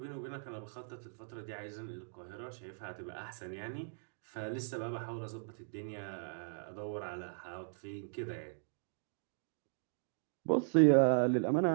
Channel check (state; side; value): silent; left; digital silence